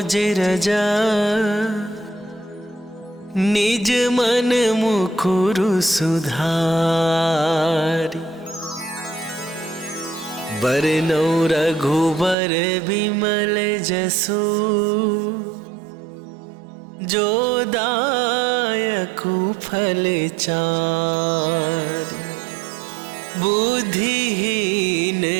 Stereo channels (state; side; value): drops out; left; at 12.4 s